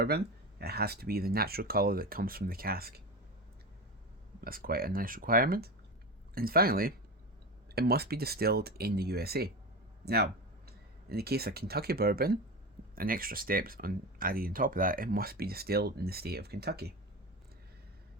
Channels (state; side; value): normal; both; correlation 0.24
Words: It has to be the natural colour that comes from the cask. That's quite a nice requirement. And finally, it must be distilled in the USA. Now, in the case of Kentucky bourbon, an extra step added on top of that, it must be distilled in the state of Kentucky.